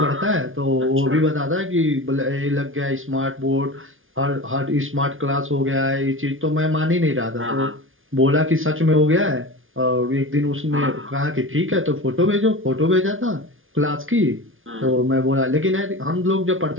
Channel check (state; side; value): late; left; 0.58 ms